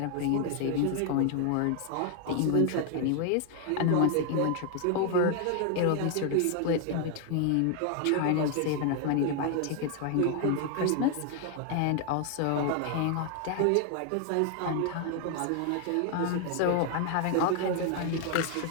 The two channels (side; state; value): both; different; correlation 0.00